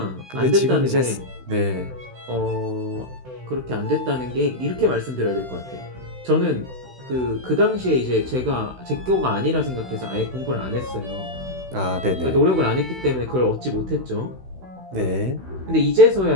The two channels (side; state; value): left; late; 16 ms